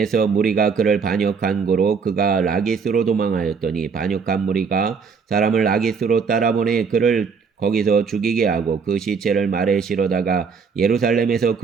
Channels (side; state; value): left; quieter; 5.6 dB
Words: 무리가 그를 반역한 고로 그가 라기스로 도망하였더니 반역한 무리가 사람을 라기스로 따라보내 그를 거기서 죽이게 하고 그 시체를 말에 실어다가 예루살렘에서